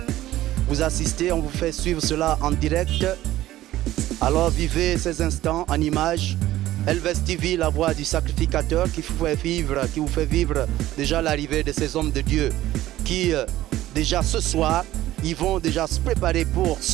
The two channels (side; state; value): left; quieter; 14.9 dB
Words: Vous assistez, on vous fait suivre cela en direct. Alors vivez ces instants en image. Elvest TV, la voix du sacrificateur qui vous fait vivre déjà l'arrivée de ces hommes de Dieu qui déjà ce soir, ils vont déjà se préparer pour